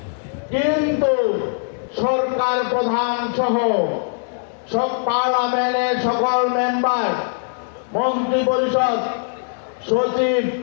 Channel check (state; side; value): silent; right; digital silence